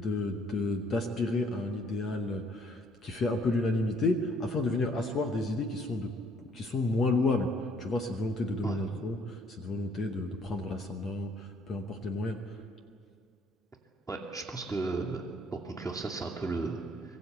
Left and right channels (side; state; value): both; normal; correlation 0.63